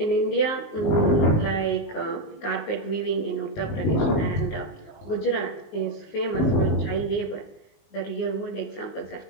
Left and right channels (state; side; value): late; right; 19 ms